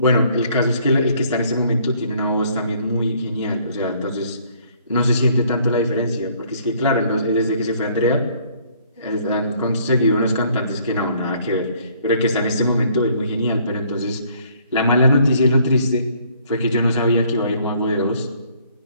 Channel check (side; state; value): both; inverted; correlation -0.62